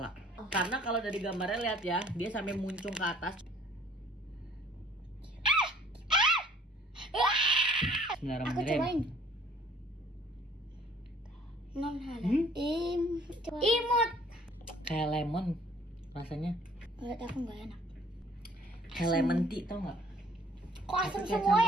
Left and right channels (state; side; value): normal; both; correlation 0.56